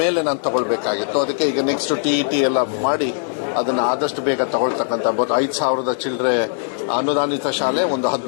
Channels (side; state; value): right; silent; 57 dB below the other